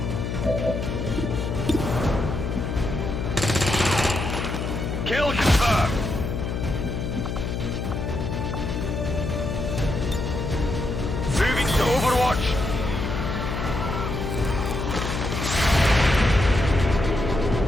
Kill confirmed. Moving to Overwatch.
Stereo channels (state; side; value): noise; left; hum, 3 dB below the sound